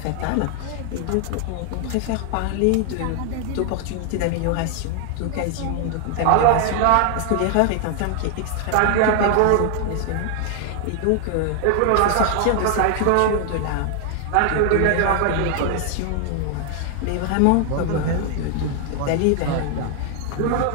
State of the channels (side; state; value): both; different; correlation 0.00